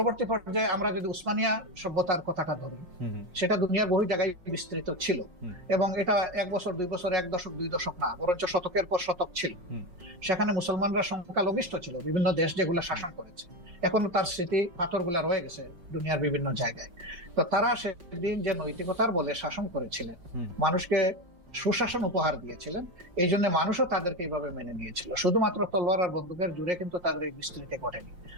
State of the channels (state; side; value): late; left; 5.5 ms